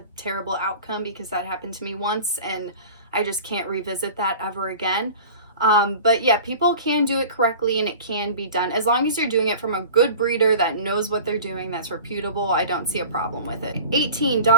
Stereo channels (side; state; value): both; inverted; correlation -0.40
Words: terrible outcome, because that happened to me once and I just can't revisit that ever again. But yeah, people can do it correctly and it can be done. As long as you're doing it from a good breeder that knows what they're doing, that's reputable, I don't see a problem with it. 18,